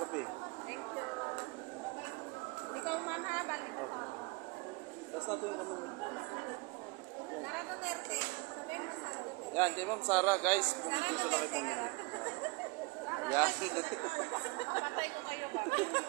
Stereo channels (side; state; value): left; quieter; 26.8 dB